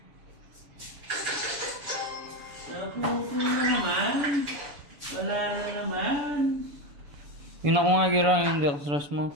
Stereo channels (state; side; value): late; left; 7.0 ms